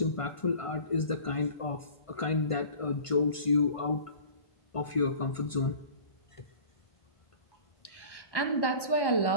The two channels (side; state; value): right; late; 1.1 ms